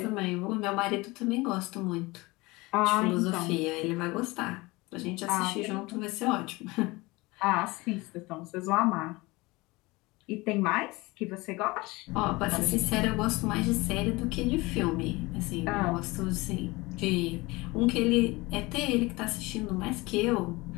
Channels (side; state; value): right; quieter; 22.7 dB